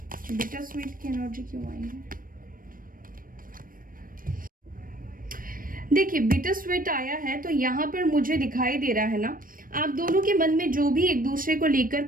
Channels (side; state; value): left; late; 0.41 ms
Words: बिटर स्वीट की एनर्जी क्यों आई है? देखिए बिटर स्वीट आया है तो यहाँ पर मुझे दिखाई दे रहा है ना, आप दोनों के मन में जो भी एक दूसरे को लेकर